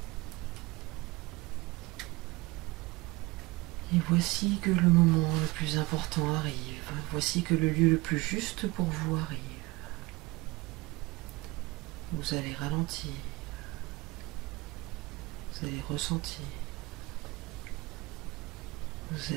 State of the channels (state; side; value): quieter; left; 22.6 dB